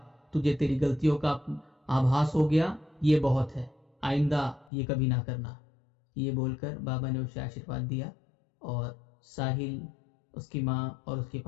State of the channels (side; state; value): right; drops out; at 4.7 s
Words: तुझे तेरी गलतियों का आभास हो गया, ये बहुत है, आइंदा ये कभी ना करना। ये बोलकर बाबा ने उसे आशीर्वाद दिया और साहिल, उसकी माँ और उसके